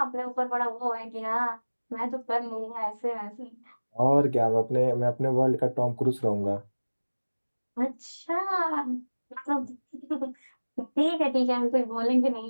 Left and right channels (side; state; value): both; inverted; correlation -1.00